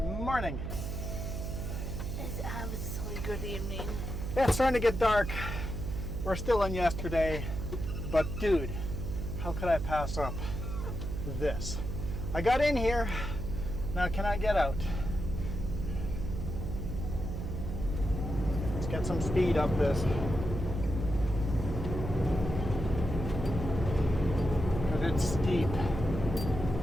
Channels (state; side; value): noise; right; hum, 4 dB below the sound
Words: morning. It's absolutely good evening. Yeah, it's starting to get dark. We're still in yesterday, but dude, how could I pass up this? I got in here, now can I get out? Let's get some speed up this. But it's steep.